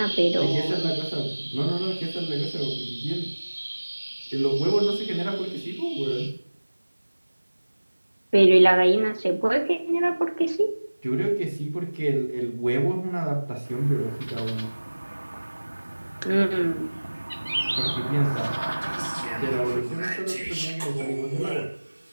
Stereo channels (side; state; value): both; inverted; correlation -1.00